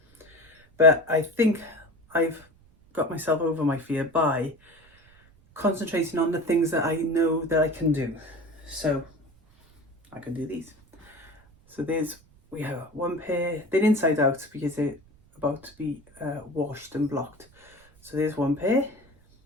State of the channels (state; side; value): noise; right; rumble, 29 dB below the sound